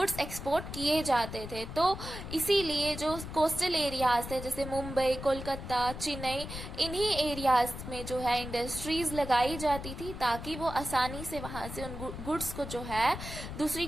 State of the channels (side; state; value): left; noise; rumble, 9 dB below the sound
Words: एक्सपोर्ट किए जाते थे। तो इसीलिए जो कोस्टल एरियाज थे जैसे मुंबई, कोलकाता, चेन्नई, इन्हीं एरियाज में जो है इंडस्ट्रीज लगाई जाती थी ताकि वो आसानी से वहाँ से उन गुड्स को जो है दूसरी